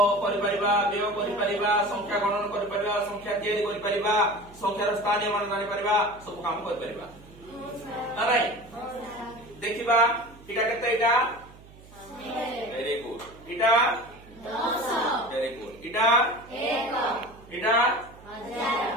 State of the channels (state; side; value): noise; right; hum, 22 dB below the sound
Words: करि परिबा व्यय करि परिबा संख्या गणन करि परिबा संख्या तैयारी करि परिबा संख्यार स्थानीय मान जानि परिबा सब काम करि परिबा नाइ देखिबा इटा केते इटा वेरी गुड इटा 10 वेरी गुड इटा 1 इटा